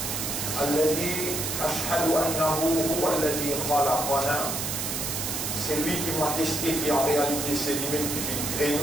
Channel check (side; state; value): right; noise; hiss, 2 dB below the sound